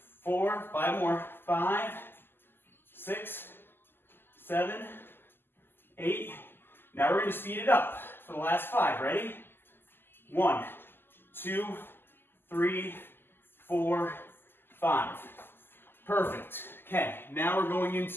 4, 5 more. 5, 6, 7, 8. Now we're going to speed it up for the last 5. Ready? 1, 2, 3, 4, 5. Perfect. Okay, now we're going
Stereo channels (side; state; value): right; late; 0.10 ms